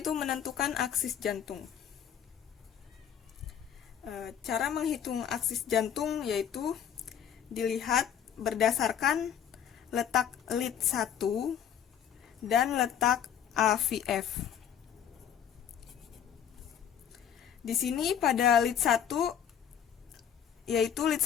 menentukan aksis jantung. Cara menghitung aksis jantung yaitu dilihat berdasarkan letak lead 1 dan letak AVF. Di sini pada lead 1 yaitu lead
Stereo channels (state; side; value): quieter; right; 8.8 dB